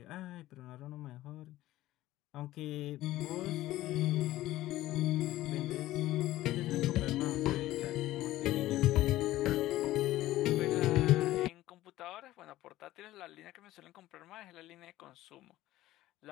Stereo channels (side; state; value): right; quieter; 15.6 dB